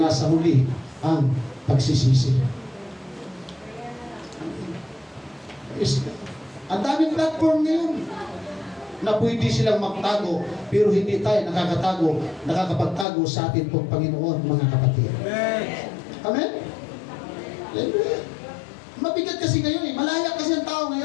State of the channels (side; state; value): right; drops out; at 13.1 s